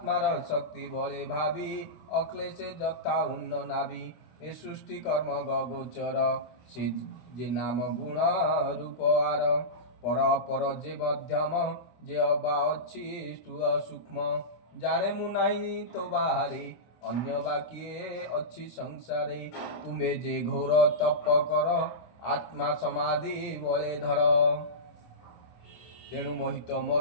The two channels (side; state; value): right; late; 25 ms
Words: शक्ति बले भावी अक्लेशे जथा उन्न नाभि ए सृष्टि कर्म गोचर से जे नाम गुण रूप आर पर पर जे मध्यम जे अबा अच्छी स्थूल सूक्ष्म जाने मु नाही तो बाहरे अन्य बाकिए अच्छी संसारे तुम्हे जे घोर तप कर आत्मा समाधि बले धर तेणु मोहित